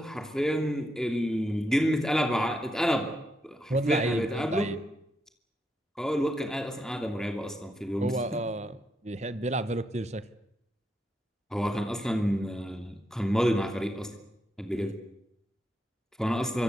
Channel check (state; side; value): normal; both; correlation 0.82